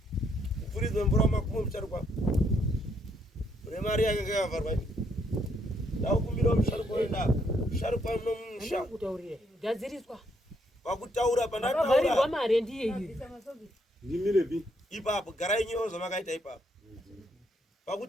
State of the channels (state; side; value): normal; both; correlation 0.73